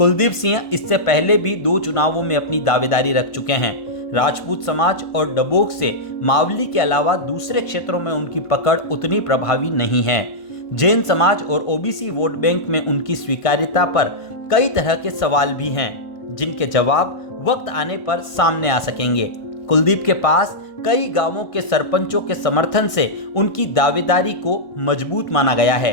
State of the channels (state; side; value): late; right; 1.5 ms